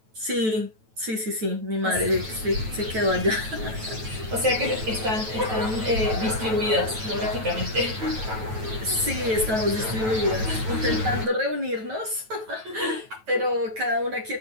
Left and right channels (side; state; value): left; late; 9.1 ms